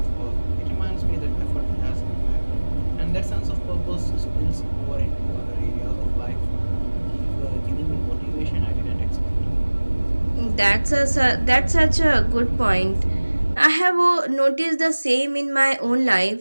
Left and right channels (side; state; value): both; inverted; correlation -1.00